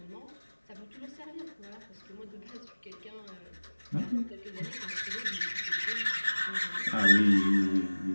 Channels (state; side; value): inverted; both; correlation -1.00